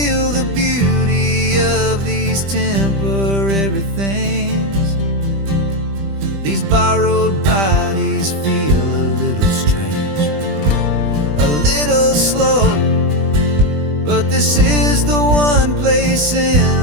the beauty of these temporary things. These borrowed bodies feel a little strange, a little slow, but this is the one place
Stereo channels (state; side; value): late; left; 20 ms